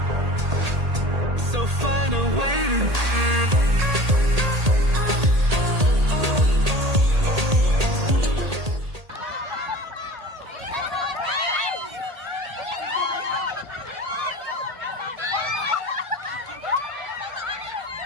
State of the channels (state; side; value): late; left; 1.8 ms